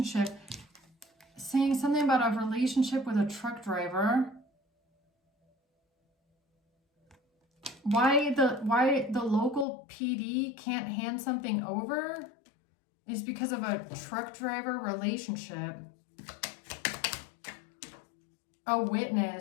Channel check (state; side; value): drops out; right; at 9.7 s